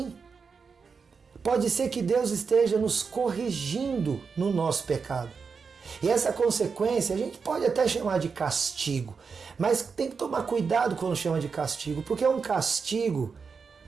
Pode ser que Deus esteja nos corrigindo no nosso pecado. E essa consequência a gente pode até chamar de castigo. Mas tem que tomar cuidado quando chama de castigo, porque é um castigo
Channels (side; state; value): left; quieter; 5.4 dB